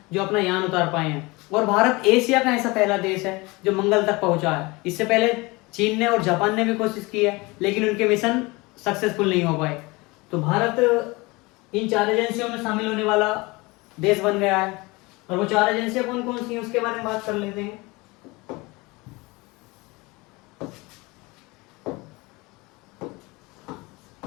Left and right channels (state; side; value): quieter; right; 24.1 dB